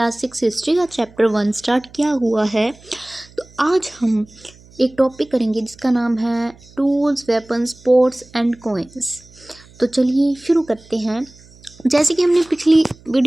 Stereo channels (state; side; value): noise; right; hum, 25 dB below the sound